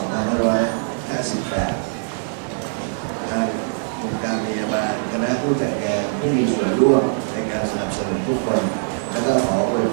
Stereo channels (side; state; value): left; silent; digital silence